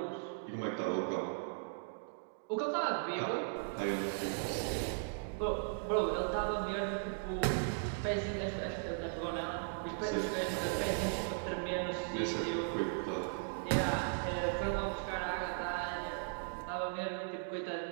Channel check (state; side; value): silent; left; digital silence